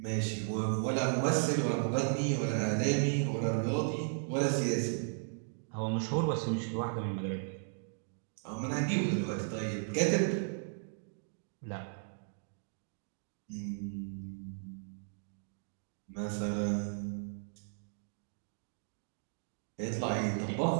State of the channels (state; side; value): silent; left; digital silence